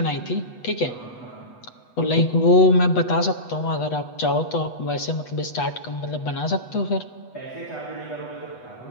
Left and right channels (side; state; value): right; late; 8.1 ms